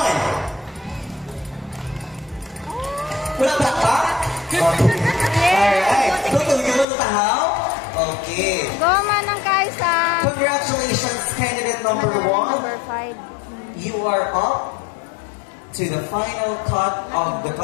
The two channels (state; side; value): drops out; right; at 6.9 s